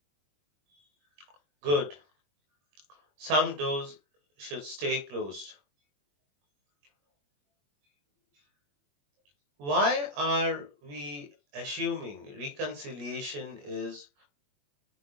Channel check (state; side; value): late; left; 21 ms